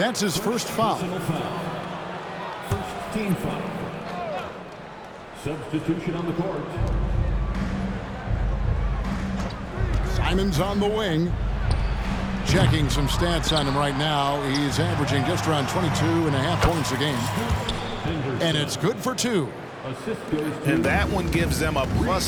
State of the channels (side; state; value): both; identical; correlation 1.00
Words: his first foul. First team foul. Substitution on the court. Simon's on the wing. Checking some stats on him right now. He's averaging just around 22.5 points a game. And it's good for 2. Assist goes to And that one gives them a